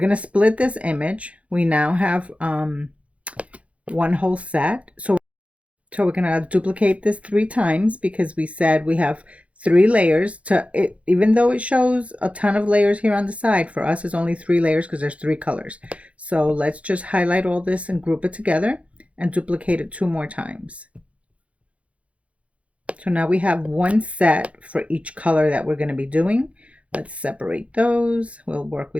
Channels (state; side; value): late; left; 0.064 ms